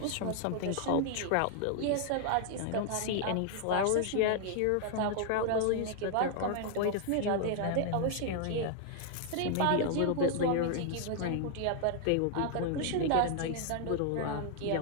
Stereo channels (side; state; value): both; different; correlation 0.00